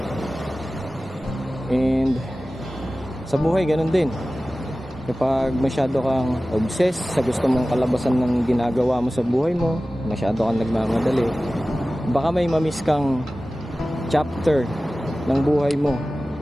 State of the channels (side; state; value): both; normal; correlation 0.96